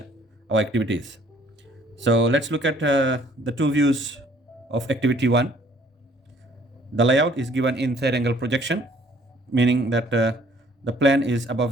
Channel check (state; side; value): normal; both; correlation 0.59